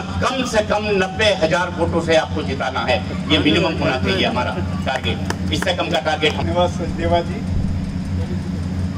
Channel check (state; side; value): identical; both; correlation 1.00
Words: कम से कम 90,000 वोटों से आपको जिताना है। ये मिनिमम होना चाहिए हमारा टारगेट, इससे कम का टारगेट। धन्यवाद सचदेवा जी।